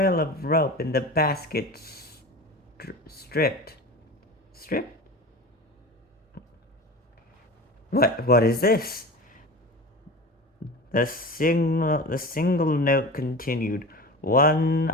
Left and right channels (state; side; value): normal; both; correlation 0.32